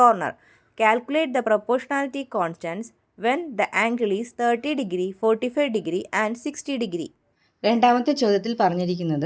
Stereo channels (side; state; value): both; identical; correlation 1.00